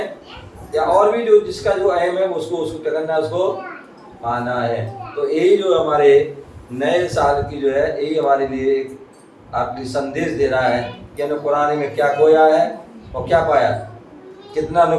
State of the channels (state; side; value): identical; both; correlation 1.00